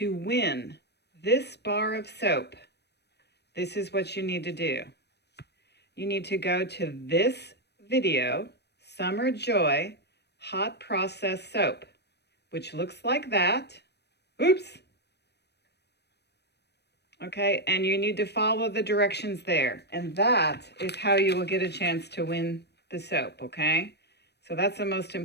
win this bar of soap, this is what you need to do. You need to go to this video, Summer Joy Hot Process Soap, which looks like that. Oops. Okay, and you need to follow the directions there. And that is how you will get a chance to win the soap, okay? So that's the most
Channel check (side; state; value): right; late; 0.49 ms